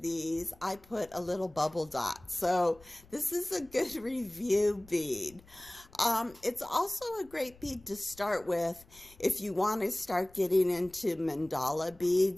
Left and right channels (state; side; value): noise; left; rumble, 25 dB below the sound